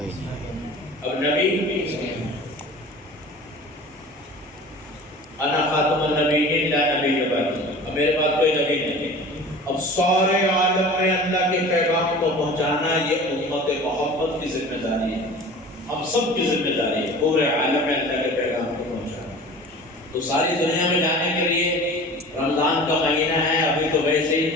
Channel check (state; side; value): normal; both; correlation 0.40